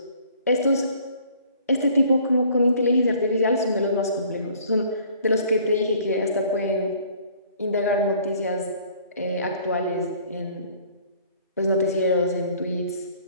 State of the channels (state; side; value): inverted; both; correlation -0.55